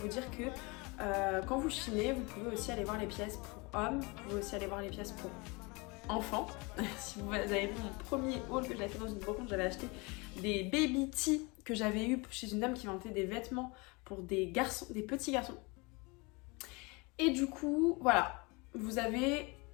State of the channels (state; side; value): quieter; right; 27.4 dB